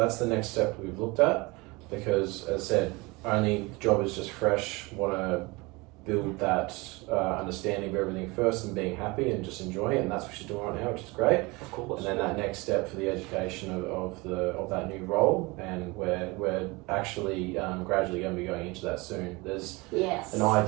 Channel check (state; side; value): quieter; left; 24.6 dB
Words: the next step we've looked at, because as I said, only job is just fresh. Want to build that understanding of everything first and being happy and just enjoying it, and that's what she's doing right now, which is great. Of course. And then that next step for the education of that new role, and we're actually gradually going to be going into that soon. There's Yes. an